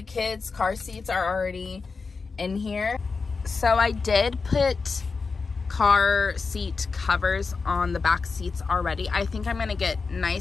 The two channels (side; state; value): right; quieter; 4.6 dB